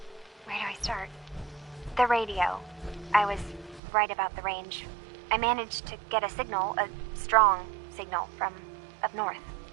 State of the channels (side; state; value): left; drops out; at 3.8 s